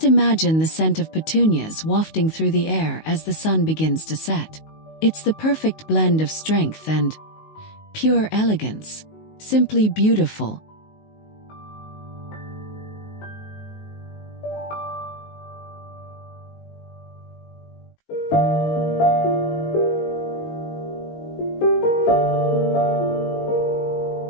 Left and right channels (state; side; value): late; right; 19 ms